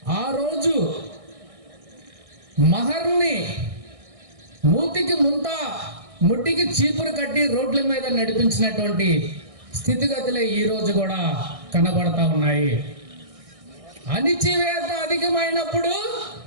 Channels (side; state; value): left; late; 1.6 ms